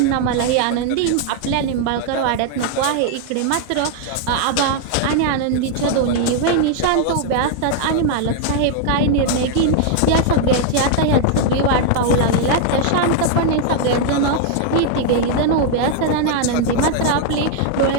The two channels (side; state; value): both; different; correlation 0.00